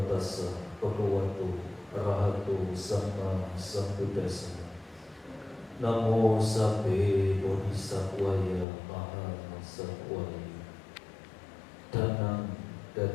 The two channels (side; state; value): right; drops out; at 8.7 s